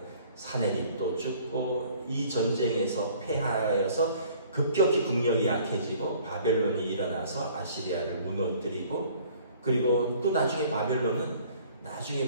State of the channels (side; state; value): both; inverted; correlation -0.54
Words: 사내립도 죽고 이 전쟁에서 패하여서 급격히 국력이 약해지고 바벨론이 일어나서 아시리아를 무너뜨리고, 그리고 또 나중에 바벨론은 나중에